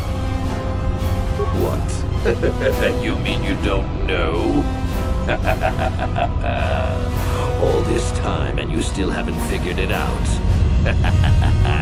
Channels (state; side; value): identical; both; correlation 1.00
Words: What? You mean you don't know? All this time and you still haven't figured it out.